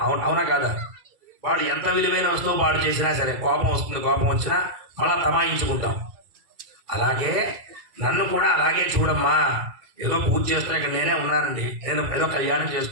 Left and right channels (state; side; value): late; left; 1.9 ms